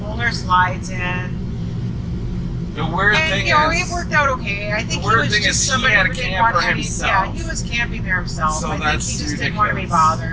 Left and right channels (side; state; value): both; identical; correlation 1.00